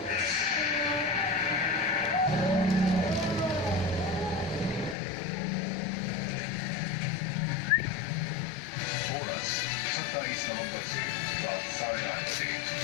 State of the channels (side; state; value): right; drops out; at 5.0 s